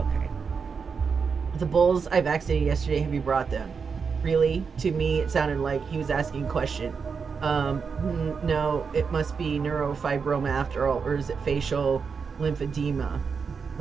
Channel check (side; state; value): left; quieter; 5.7 dB